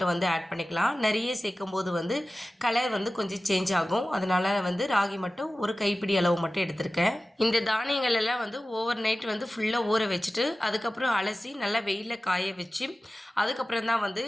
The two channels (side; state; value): both; normal; correlation 0.96